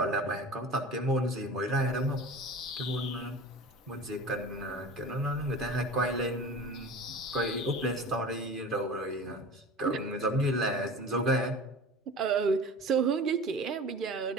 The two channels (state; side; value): normal; both; correlation 0.36